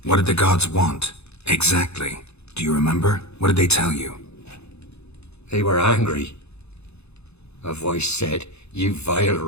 What did the gods want? Exactly. Do you remember? What did they tell you? They were angry. A voice said, "You vile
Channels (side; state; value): right; late; 0.80 ms